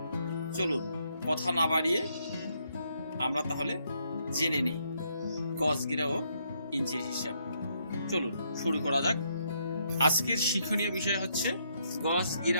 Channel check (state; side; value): inverted; both; correlation -0.74